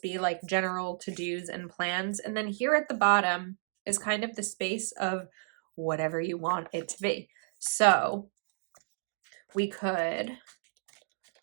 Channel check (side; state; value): left; silent; digital silence